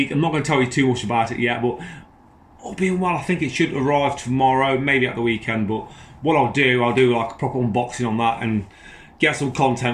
I'm not going to tell you too much about it yet, but all being well, I think it should arrive tomorrow, maybe at the weekend. But what I'll do like a proper unboxing on that and get some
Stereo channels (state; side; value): identical; both; correlation 1.00